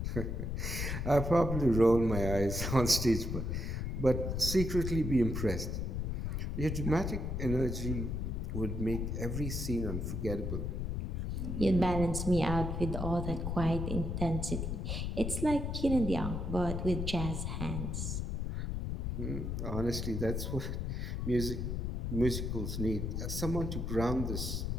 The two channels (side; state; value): left; noise; rumble, 2 dB below the sound